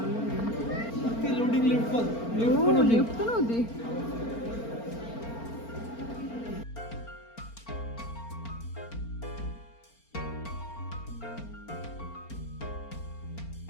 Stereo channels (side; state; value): right; late; 4.4 ms